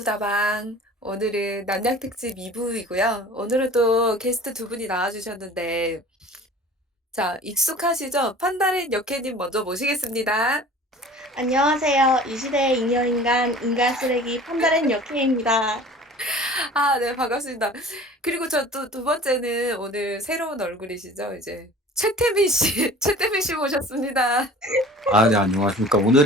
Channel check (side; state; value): both; normal; correlation 0.44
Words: 오늘은 남양특집 2부이고요. 오늘은 또 게스트 두 분이 나와주셨는데, 자, 익숙하시죠? 판다린 여캐님 먼저 모시겠습니다. 안녕하세요. 이 시대의 잉여인간, 인간 쓰레기 판다렌 여캐입니다. 아, 네, 반갑습니다. 그리고 저 또 두 번째는 오늘 새로운 얼굴이시죠? 이제 최태민 씨, 최태민 씨 모셨습니다. 아, 네, 안녕하십니까.